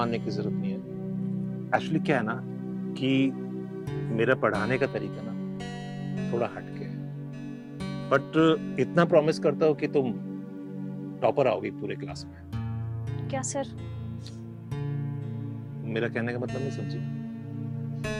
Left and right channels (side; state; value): both; identical; correlation 1.00